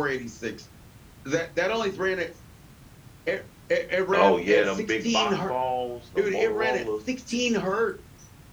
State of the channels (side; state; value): both; identical; correlation 1.00